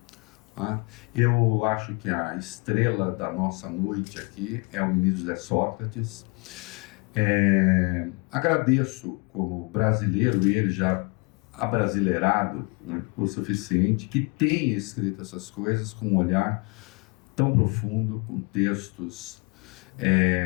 Eu acho que a estrela da nossa noite aqui é o ministro José Sócrates. Agradeço como brasileiro, ele já abrasileirado, né, o suficiente, que tenha escrito essas coisas com um olhar tão profundo, com textos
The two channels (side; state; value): right; quieter; 31.9 dB